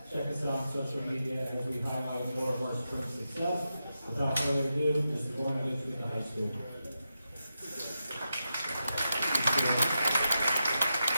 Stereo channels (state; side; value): inverted; both; correlation -0.88